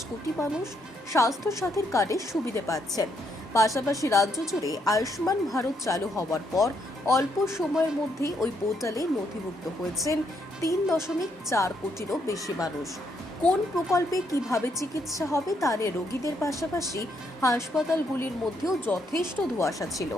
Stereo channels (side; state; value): both; normal; correlation 0.74